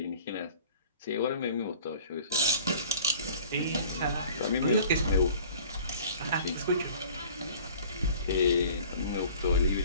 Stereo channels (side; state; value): both; inverted; correlation -0.48